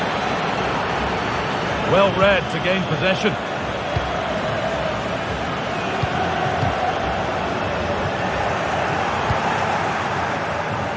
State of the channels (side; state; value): both; identical; correlation 1.00